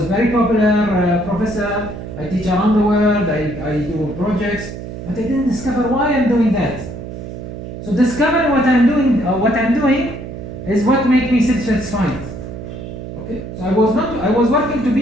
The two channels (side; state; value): right; noise; hum, 10 dB below the sound